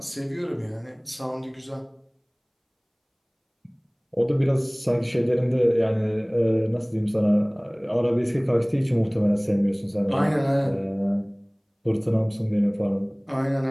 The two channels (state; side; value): identical; both; correlation 1.00